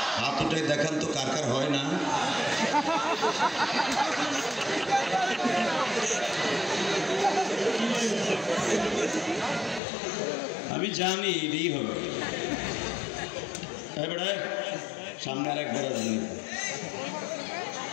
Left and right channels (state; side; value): drops out; right; at 9.8 s